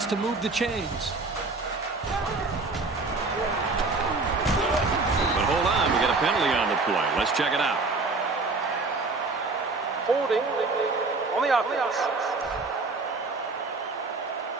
to move the chains. But hold on, we got a penalty on the play. Let's check it out. Holding on the offense.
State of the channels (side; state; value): left; quieter; 3.7 dB